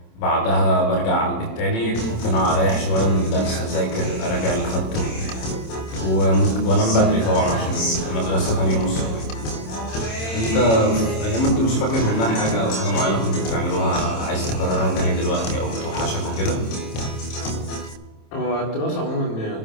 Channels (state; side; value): late; right; 27 ms